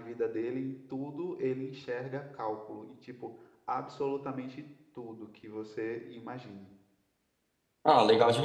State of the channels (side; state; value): both; identical; correlation 1.00